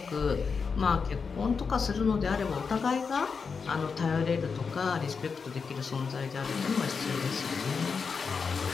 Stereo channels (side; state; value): right; quieter; 5.4 dB